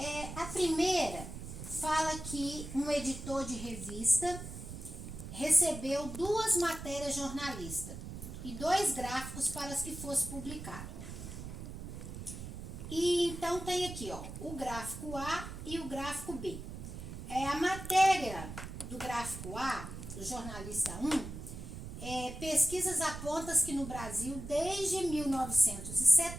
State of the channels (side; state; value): right; noise; rumble, 9 dB below the sound